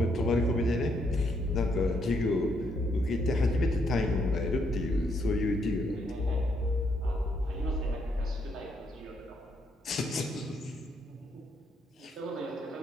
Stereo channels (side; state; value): both; normal; correlation 0.74